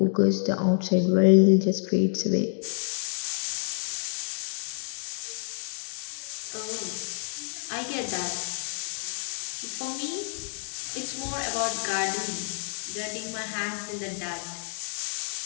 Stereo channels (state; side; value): silent; right; digital silence